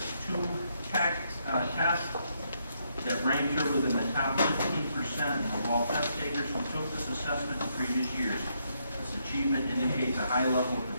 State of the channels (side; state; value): both; inverted; correlation -0.76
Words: 2 test that ranked her within the top 15% of all test takers who took this assessment in previous years. This achievement indicates a high level of